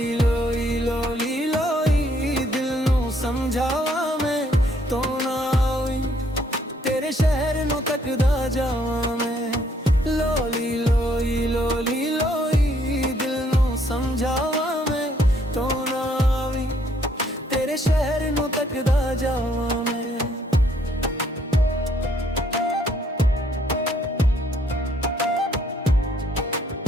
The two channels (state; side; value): normal; both; correlation 0.67